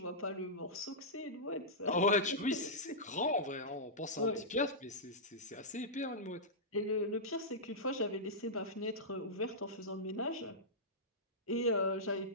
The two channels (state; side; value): normal; both; correlation -0.13